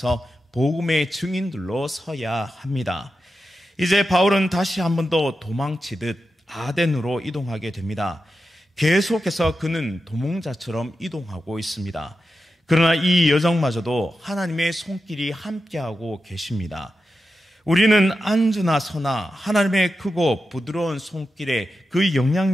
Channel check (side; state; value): both; normal; correlation 0.90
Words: 복음의 증인들로 서야 합니다. 이제 바울은 다시 한 번 더 도망치듯 아덴으로 이동하게 됩니다. 계속해서 그는 도망자처럼 이동하고 있습니다. 그러나 이 여정마저도 하나님의 손길이 함께하고 계십니다. 우리는 앉으나 서나 하나님의 크고 부드러운 손길에 그